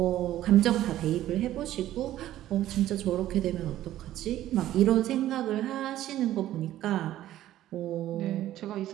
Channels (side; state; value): left; quieter; 13.5 dB